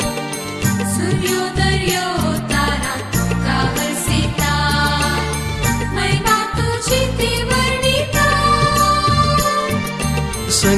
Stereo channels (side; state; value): both; identical; correlation 1.00